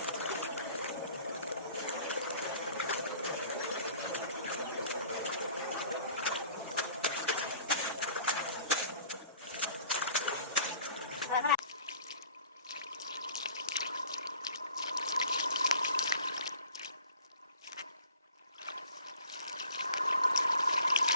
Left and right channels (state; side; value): inverted; both; correlation -0.48